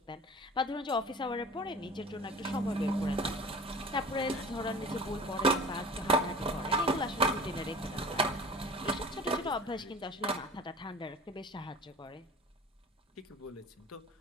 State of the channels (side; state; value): both; normal; correlation 0.40